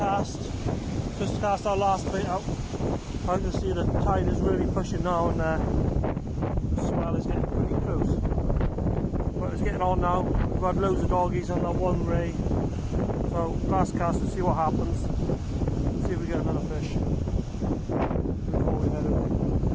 Just cast our last bait out. I can see the tide is really pushing now, and the swell is getting pretty close. But it's getting on now. We've had loads of doggies on that one ray. So last cast to see what happens. See if we get another fish before we head away.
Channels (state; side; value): identical; both; correlation 1.00